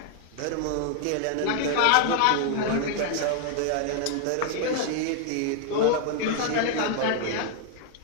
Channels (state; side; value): different; both; correlation 0.00